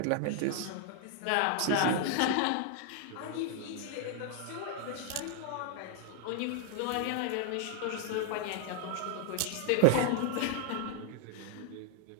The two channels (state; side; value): different; both; correlation 0.00